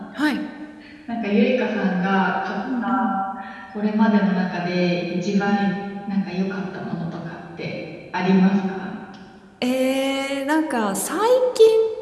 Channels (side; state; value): both; identical; correlation 1.00